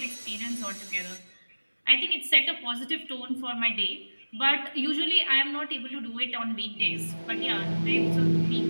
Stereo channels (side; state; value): both; inverted; correlation -1.00